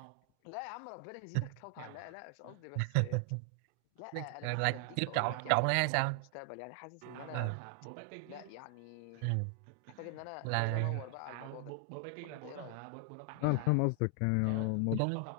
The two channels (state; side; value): different; both; correlation 0.00